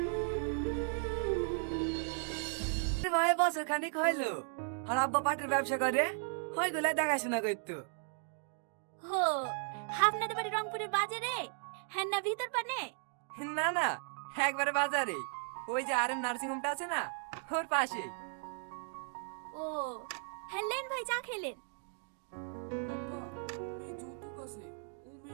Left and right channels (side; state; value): left; silent; 54 dB below the other